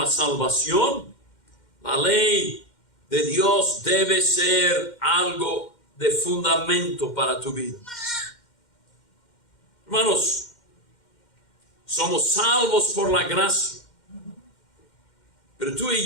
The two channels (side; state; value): right; late; 2.1 ms